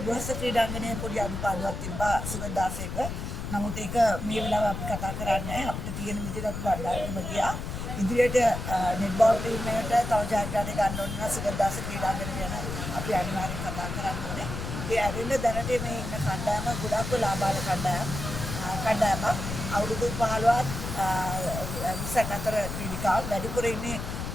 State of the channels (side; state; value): left; noise; rumble, 5 dB below the sound